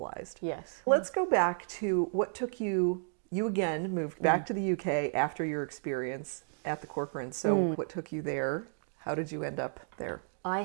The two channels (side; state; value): left; silent; digital silence